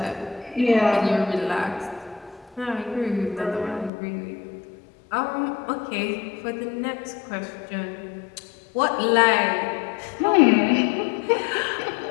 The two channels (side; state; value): right; drops out; at 3.9 s